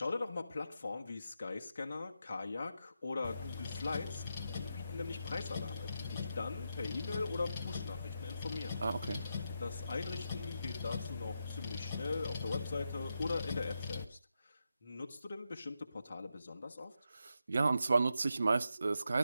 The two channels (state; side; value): inverted; both; correlation -0.85